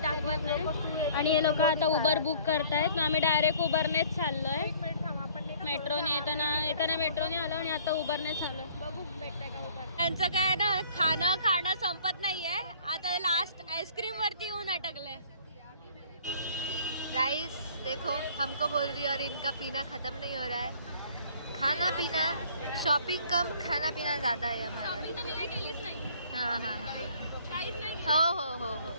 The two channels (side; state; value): both; inverted; correlation -0.55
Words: दाखवत नाही. आणि हे लोक आता उबर बुक करतायत. आम्ही डायरेक्ट उबरनेच चाललो आहे. मेट्रोने येताना मेट्रोने आलो आणि आता उबरने चाललो. बघू भेटतंय का उबर. त्यांचं काय ना खाणं संपत नाहीये. आता लास्ट आईस्क्रीम वरती येऊन अटकले. गाइस देखो हमको बोल रही है और इनका पीना खत्म नहीं हो रहा है. खाना पीना शॉपिंग कम, खाना पीना ज़्यादा है हमारा. शॉपिंग तर मी नाही केलीच नाही. हाँ काहीच नाही. हो